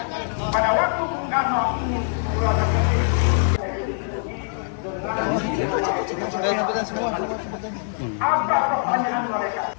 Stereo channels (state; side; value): silent; right; 56 dB below the other